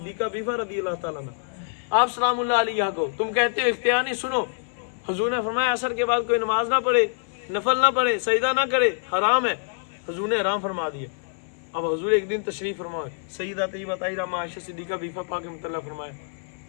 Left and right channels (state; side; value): silent; right; 56 dB below the other